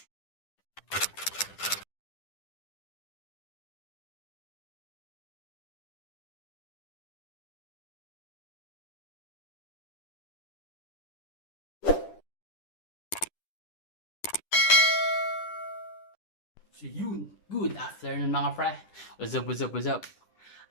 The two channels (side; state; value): right; late; 10 ms